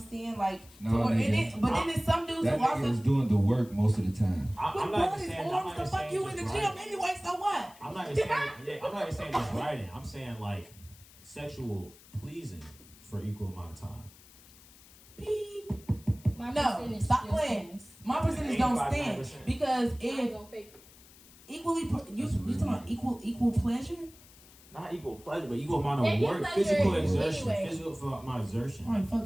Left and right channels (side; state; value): left; noise; hiss, 23 dB below the sound